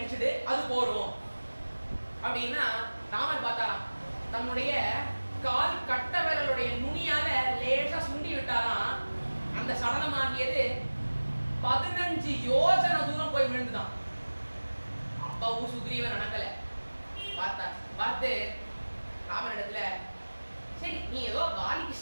அது போறோம் அப்படின்னா ராமர் பார்த்தாராம். தன்னுடைய கால் கட்ட விரலுடைய நுனியால லேசா சுண்டி விட்டாராம். அந்த சடலமாகியது 15 யோஜனை தூரம் போய் விழுந்துதான். அப்பவும் சுக்ரீவன் நடக்கல. பார்த்து ராமனிடத்துல சரி நீ ஏதோ வாலிக்கு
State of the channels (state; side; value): inverted; both; correlation -1.00